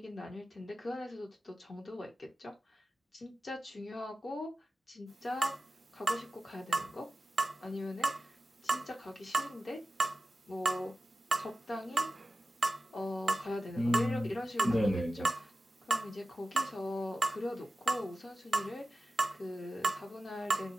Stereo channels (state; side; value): normal; both; correlation 0.95